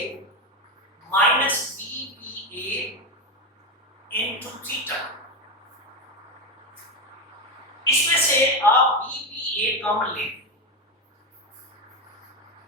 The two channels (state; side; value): normal; both; correlation 0.13